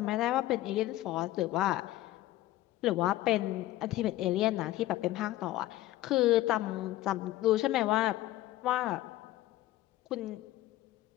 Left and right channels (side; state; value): right; quieter; 15.7 dB